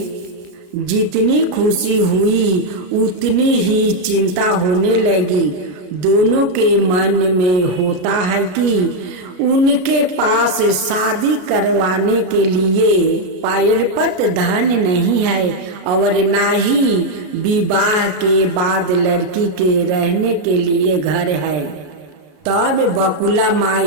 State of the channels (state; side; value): late; left; 33 ms